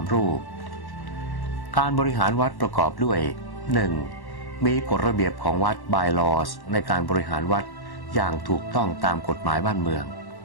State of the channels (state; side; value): late; right; 1.1 ms